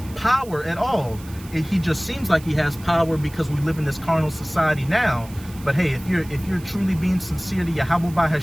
power at all. He just seems like he has power because we live in this carnal society now. But hey, if you're truly being sincere to Yahweh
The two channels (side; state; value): right; noise; hiss, 20 dB below the sound